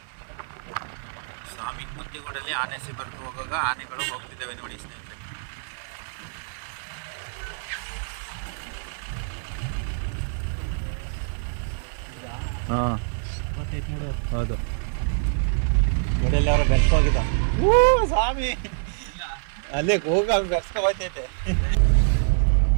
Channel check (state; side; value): silent; left; digital silence